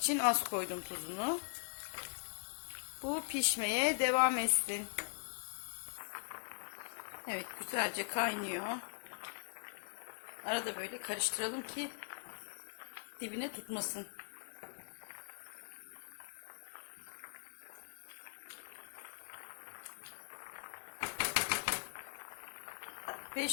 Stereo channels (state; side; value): silent; right; digital silence